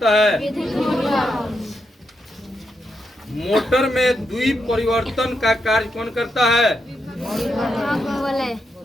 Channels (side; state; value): both; normal; correlation 0.83